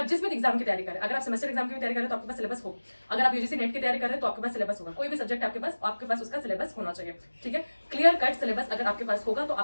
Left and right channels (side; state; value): both; inverted; correlation -1.00